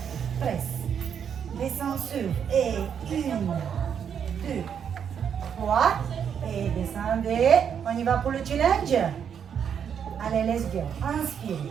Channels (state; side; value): quieter; left; 7.9 dB